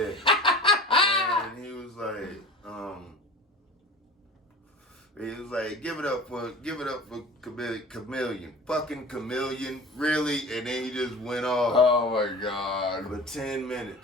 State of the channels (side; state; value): both; normal; correlation 0.38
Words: And he was like, give it up for Kamilian. Fucking Kamilian. Really? And then he just went off. Oh my God. For 10